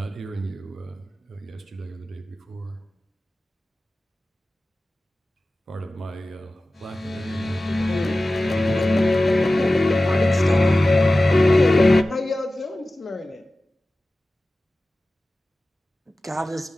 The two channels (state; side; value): normal; both; correlation 0.96